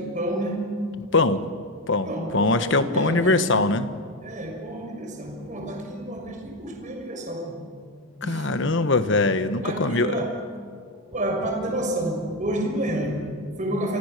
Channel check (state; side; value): normal; both; correlation 0.12